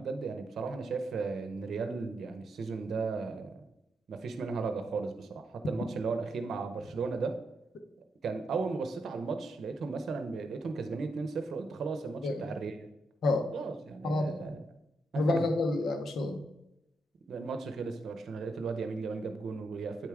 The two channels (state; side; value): normal; both; correlation 0.82